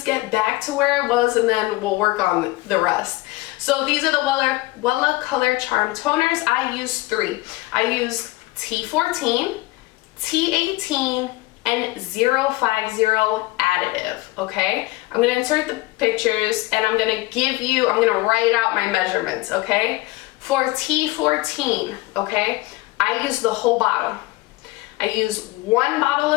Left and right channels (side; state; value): right; quieter; 19.8 dB